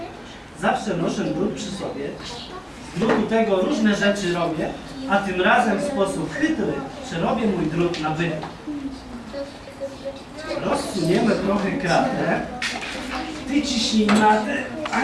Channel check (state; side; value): identical; both; correlation 1.00